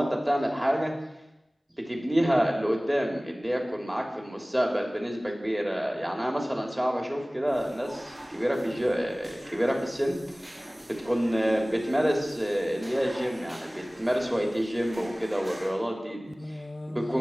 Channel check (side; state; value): both; normal; correlation 0.98